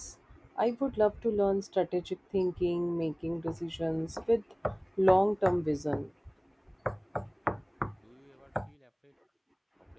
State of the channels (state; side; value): identical; both; correlation 1.00